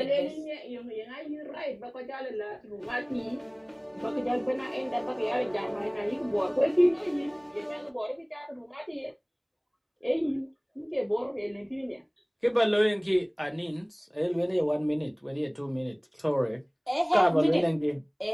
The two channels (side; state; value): both; identical; correlation 1.00